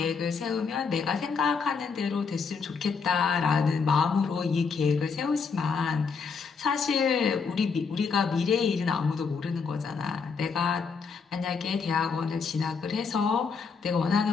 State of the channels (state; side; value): quieter; right; 5.4 dB